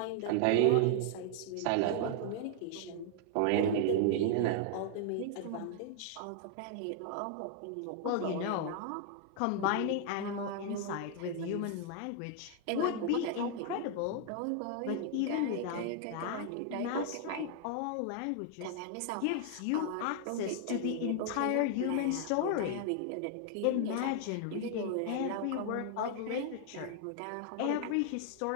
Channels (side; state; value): both; different; correlation 0.00